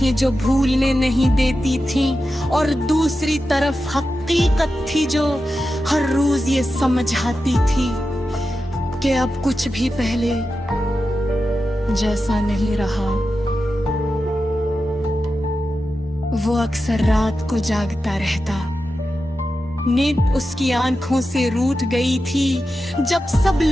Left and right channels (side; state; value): both; normal; correlation 0.91